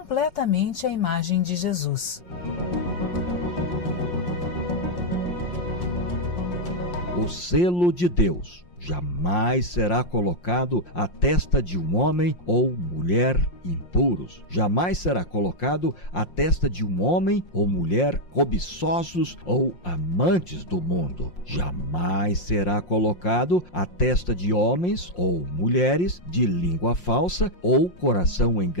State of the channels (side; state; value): right; late; 5.6 ms